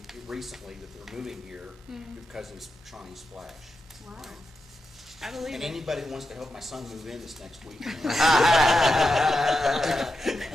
recently that they're moving here Mhm. because of Shawnee Splash. Wow. I believe And it. anybody that wants to help my son move in this next week.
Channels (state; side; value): normal; both; correlation 0.88